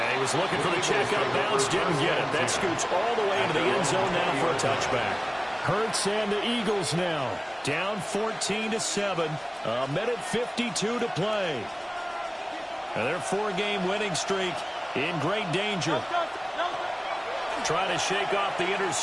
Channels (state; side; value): identical; both; correlation 1.00